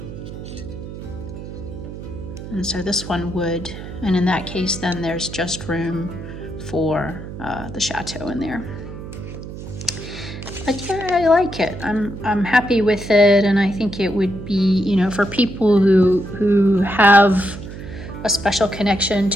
And so this one would, and in that case, then there's just room for the chateau in there. But yeah, I like it. I'm happy with it, and I think it would be, for people who have a special connection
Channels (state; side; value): noise; right; hum, 11 dB below the sound